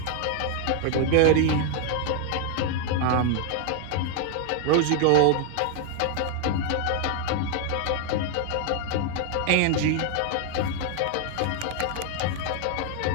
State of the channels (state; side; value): different; both; correlation 0.00